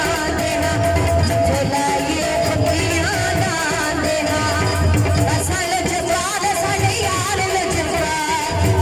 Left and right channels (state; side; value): identical; both; correlation 1.00